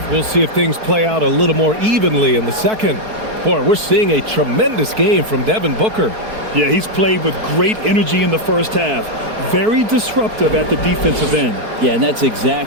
we'll see if things play out a little more evenly in the second. Boy, we're seeing a tremendous game from Devin Booker. Yeah, he's played with great energy in the first half. Very disruptive at the defensive end. Yeah, and that's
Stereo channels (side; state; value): left; late; 4.6 ms